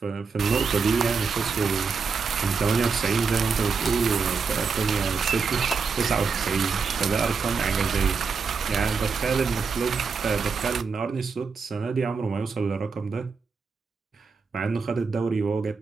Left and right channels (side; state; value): left; quieter; 5.1 dB